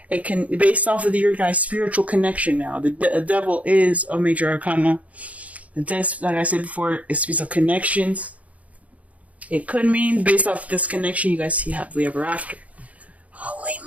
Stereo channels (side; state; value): left; late; 0.068 ms